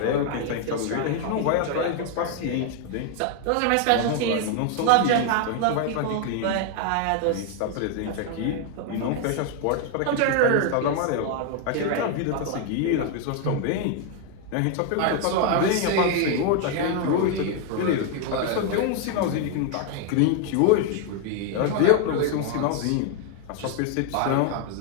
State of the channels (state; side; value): different; both; correlation 0.00